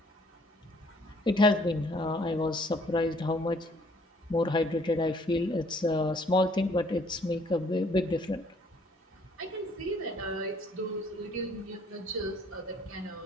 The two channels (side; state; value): both; normal; correlation 0.61